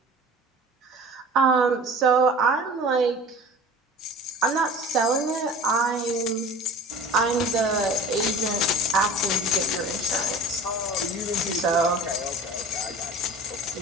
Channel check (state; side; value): normal; both; correlation 0.41